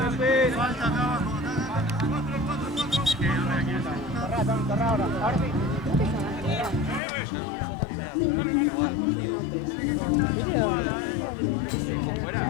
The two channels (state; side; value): drops out; right; at 7.0 s